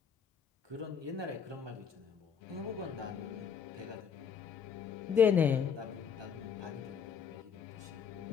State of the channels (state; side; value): quieter; right; 7.0 dB